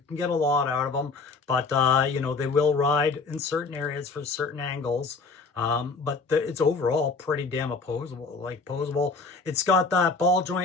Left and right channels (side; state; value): right; quieter; 4.2 dB